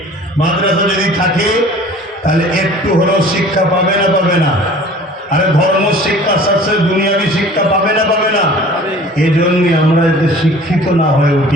মাদ্রাসা যদি থাকে তাহলে একটু হলেও শিক্ষা পাবে না? পাবে না? আরে ধর্ম শিক্ষার সাথে দুনিয়াবী শিক্ষা পাবে না? পাবে না? এই জন্যই আমরা যাতে শিক্ষিত না হয়ে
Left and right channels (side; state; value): both; normal; correlation 0.46